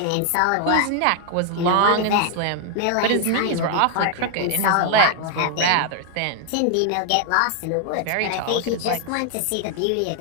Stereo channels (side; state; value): both; different; correlation 0.00